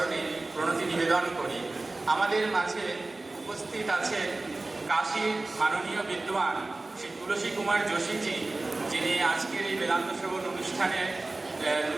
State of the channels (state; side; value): quieter; left; 3.1 dB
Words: প্রণতি নিবেদন করি। আমাদের মাঝে উপস্থিত আছে কাশীর মাননীয় বিদ্বান শ্রী তুলসী কুমার যোশীজি, যিনি আজকের এই বেদান্ত শ্রবণ অনুষ্ঠানে